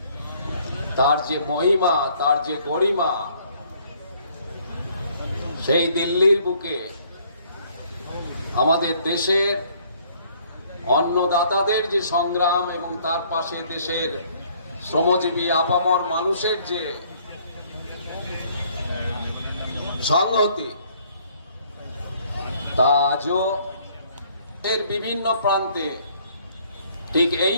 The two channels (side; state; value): both; inverted; correlation -0.62